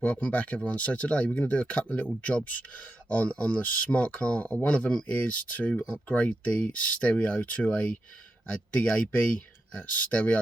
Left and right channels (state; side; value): normal; both; correlation 0.87